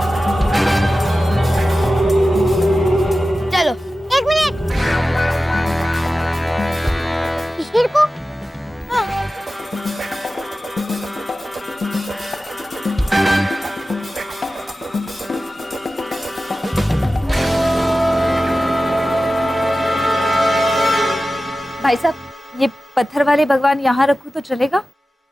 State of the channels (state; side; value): normal; both; correlation 0.95